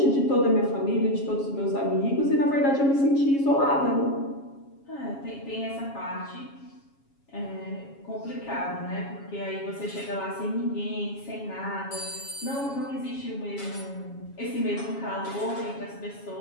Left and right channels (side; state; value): right; late; 7.3 ms